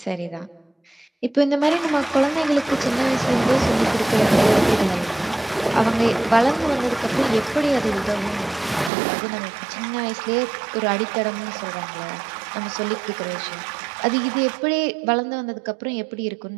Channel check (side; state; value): left; drops out; at 8.9 s